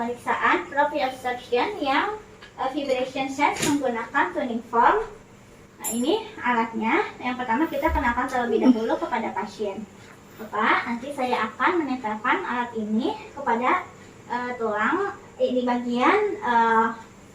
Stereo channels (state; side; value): identical; both; correlation 1.00